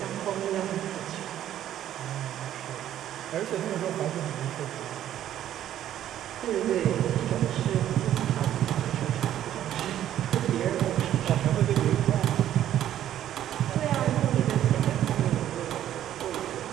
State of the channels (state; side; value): quieter; left; 11.6 dB